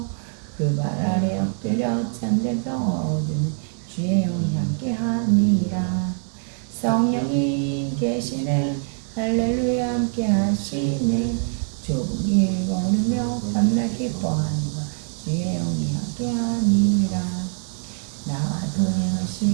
그 발 아래 엎드려 참된 평화 얻으면 주의 영이 함께함이라 성령이 계시네 할렐루야 함께하시네 좁은 길 걸으며 밤낮 기뻐하는 것 주의 영이 함께함이라 나와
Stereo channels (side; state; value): left; silent; 63 dB below the other